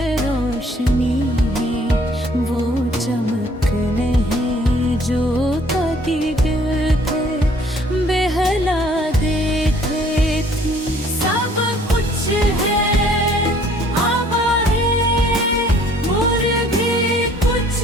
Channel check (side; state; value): both; normal; correlation 0.58